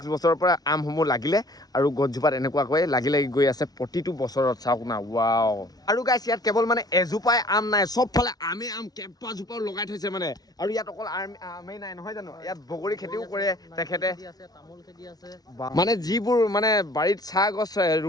বছৰৰ পৰা আমসমূহ লাগিলে আৰু গছজোপাত এনেকুৱাকৈ লাগি গৈ আছে প্ৰতিটো বছৰত চাওক না ৱাও আৰু গাইছ ইয়াত কেৱল মানে এজোপাই আম নাই চবফালে আম কেইবাজোপাও লগাই থৈছে মানে আৰু ইয়াত অকল আমেই নাই নহয় জানো ইয়াত বগৰী খেতিও কৰে তেখেতে মানে যিবোৰ মানে বাৰীত চাহ গছ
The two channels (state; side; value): late; right; 0.19 ms